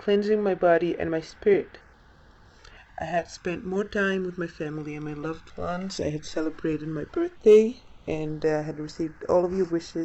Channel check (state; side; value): identical; both; correlation 1.00